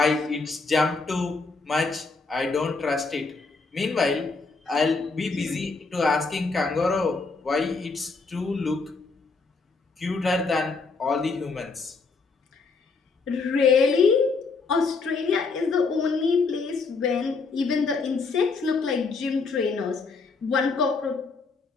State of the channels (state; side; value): quieter; right; 4.3 dB